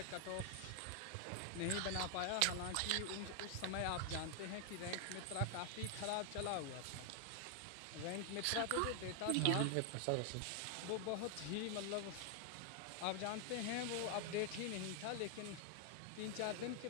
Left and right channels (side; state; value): both; different; correlation 0.00